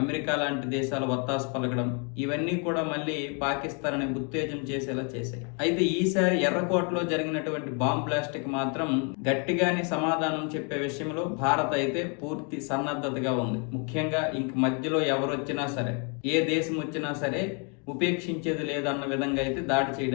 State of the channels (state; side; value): quieter; right; 37.1 dB